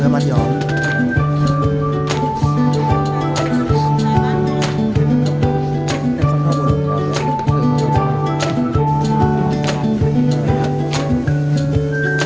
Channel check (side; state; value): both; identical; correlation 1.00